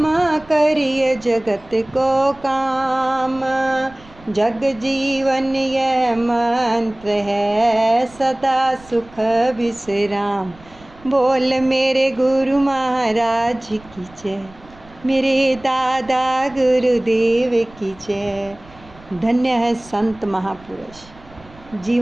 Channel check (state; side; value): noise; right; rumble, 24 dB below the sound